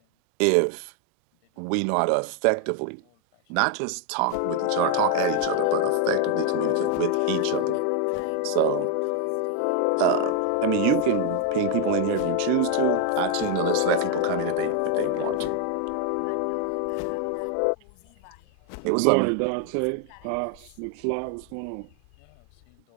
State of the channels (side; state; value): both; different; correlation 0.01